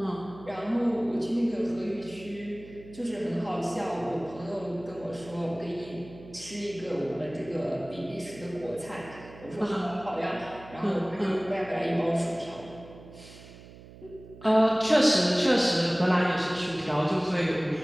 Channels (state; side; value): noise; right; hum, 18 dB below the sound